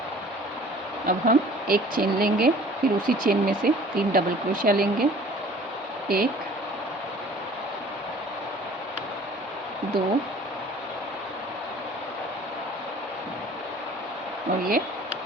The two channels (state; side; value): normal; both; correlation 0.50